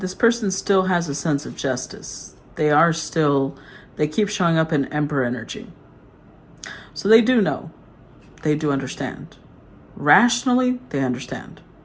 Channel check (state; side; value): identical; both; correlation 1.00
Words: person still has a sense of justice. They keep showing up in Emperor energy. So they do know. They do understand. Rationally, they understand.